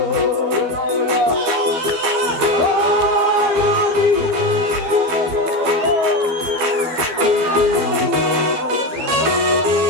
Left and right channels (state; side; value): late; left; 12 ms